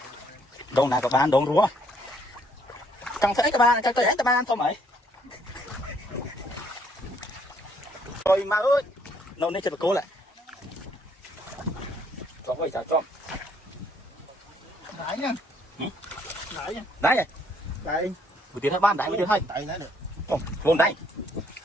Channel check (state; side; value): normal; both; correlation 0.67